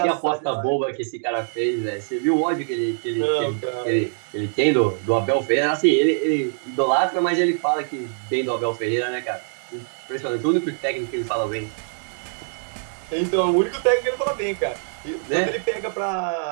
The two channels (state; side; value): silent; left; digital silence